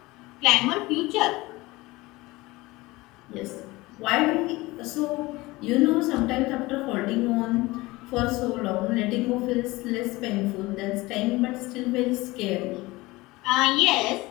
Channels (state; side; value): quieter; right; 20.9 dB